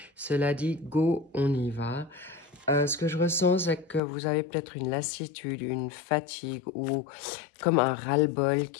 Cela dit, go, on y va. Ce que je ressens, c'est que vous avez peut-être une lassitude, une fatigue ou comme un ras-le-bol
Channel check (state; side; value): drops out; right; at 4.0 s